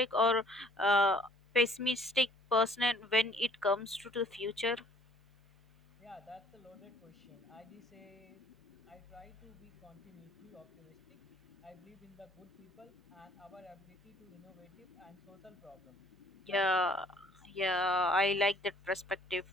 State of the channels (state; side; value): normal; both; correlation 0.58